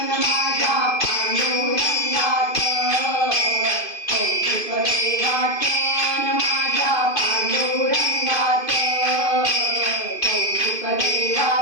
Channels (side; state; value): right; late; 2.5 ms